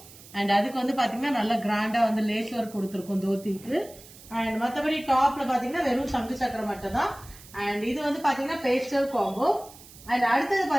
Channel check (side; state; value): right; noise; hiss, 20 dB below the sound